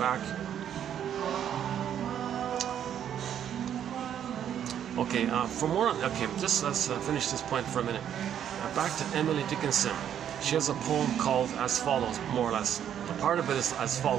Okay, just let's finish this point for a minute. Back to Emily Dickinson. She has a poem called as follows, more or less. A part of it is as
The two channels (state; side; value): quieter; left; 9.6 dB